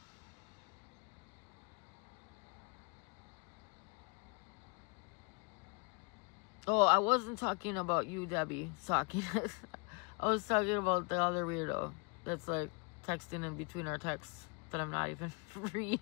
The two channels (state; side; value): quieter; right; 33.7 dB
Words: Oh, I wasn't talking about you, Debbie. I was talking about the other weirdo that's like texting in between our texts that I'm not even